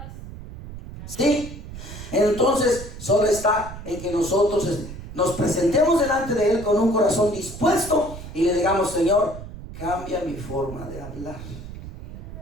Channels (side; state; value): right; noise; rumble, 12 dB below the sound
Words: Sí, entonces solo está en que nosotros nos presentemos delante de Él con un corazón dispuesto y le digamos: Señor, cambia mi forma de hablar.